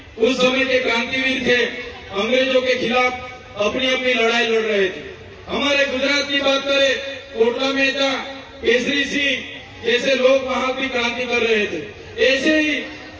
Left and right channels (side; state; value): both; identical; correlation 1.00